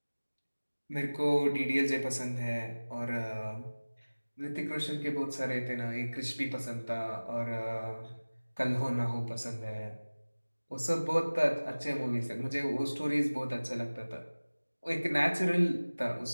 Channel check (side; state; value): both; inverted; correlation -1.00